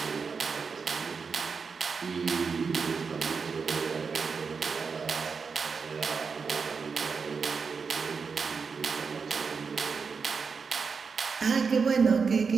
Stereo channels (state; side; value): quieter; left; 5.3 dB